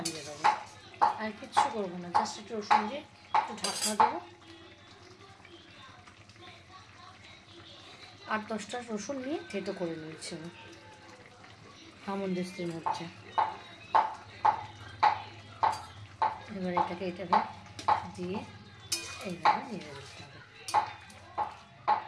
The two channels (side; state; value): both; identical; correlation 1.00